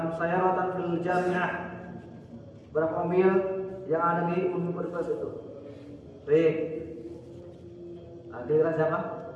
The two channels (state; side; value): identical; both; correlation 1.00